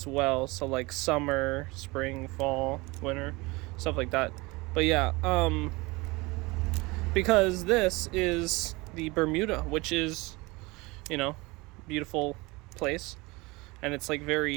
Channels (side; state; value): left; quieter; 23.8 dB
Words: well, so like summer, spring, fall, winter, stuff like that. But yeah, because this is the Bermuda, which is, beautiful place, and it's like